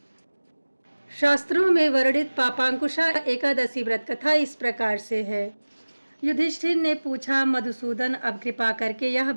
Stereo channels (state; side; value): inverted; both; correlation -1.00